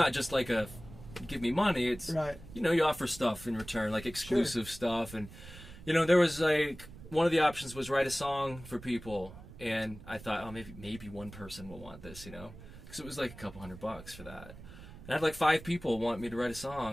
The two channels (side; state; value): right; noise; rumble, 16 dB below the sound